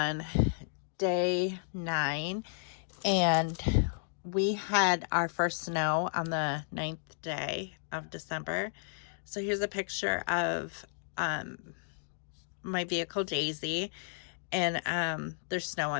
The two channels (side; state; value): right; silent; digital silence